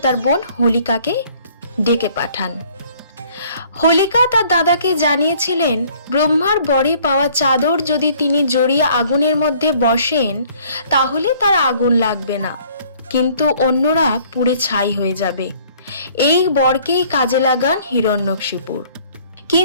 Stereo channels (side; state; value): both; inverted; correlation -0.58